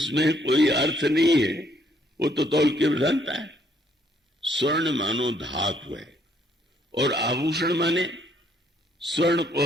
कोई अर्थ नहीं है, वो तो तौल की प्रधानता है। स्वर्ण मानो धातु है और आभूषण माने स्वर्ण को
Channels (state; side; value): normal; both; correlation 0.68